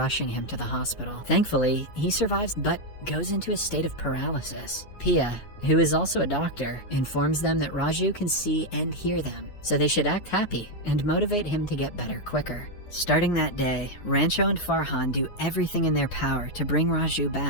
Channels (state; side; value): late; right; 9.5 ms